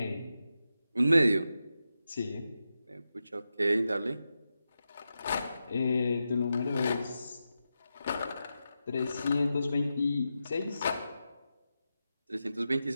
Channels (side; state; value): both; inverted; correlation -0.89